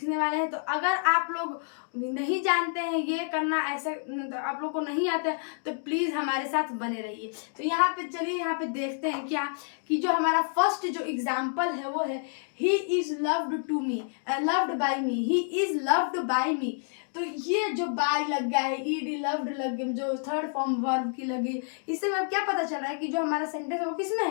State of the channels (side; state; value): right; silent; 59 dB below the other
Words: वाले हैं। तो अगर आप लोग नहीं जानते हैं ये करना, ऐसे तो आप लोग को नहीं आता है, तो प्लीज़ हमारे साथ बने रहिए। तो यहाँ पे चलिए, यहाँ पे देखते हैं क्या कि जो हमारा फर्स्ट जो एग्जाम्पल है वो है he is loved to me, loved by me, he is loved by me. तो ये जो बाय लग गया है, ईडी लव्ड लग गया, जो थर्ड फॉर्म वर्ब की लगी, इससे हमें क्या पता चल रहा है कि जो हमारा सेंटेंस है वो किसमें